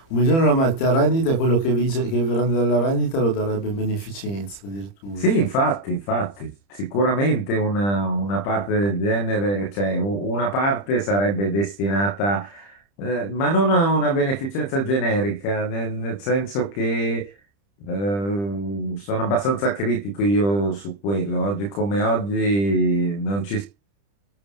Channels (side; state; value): right; late; 30 ms